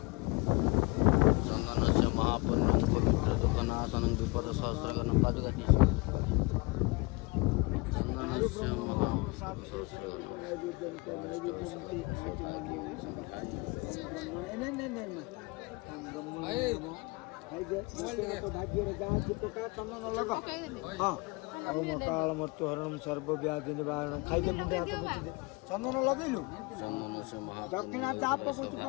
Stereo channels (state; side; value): quieter; right; 26.0 dB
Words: काल मृत्यु हरणम सर्वव्याधि निवारणम खाइदे मुंडे हाथ बुझिदे चंदन लगैलु दक्षिणा चाप कुछ